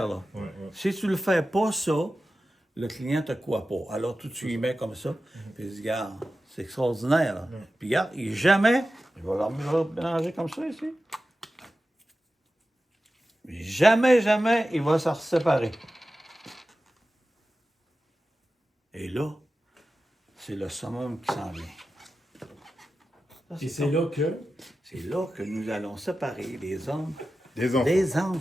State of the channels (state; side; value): normal; both; correlation 0.93